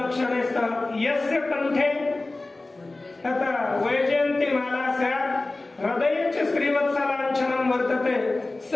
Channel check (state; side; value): quieter; right; 3.1 dB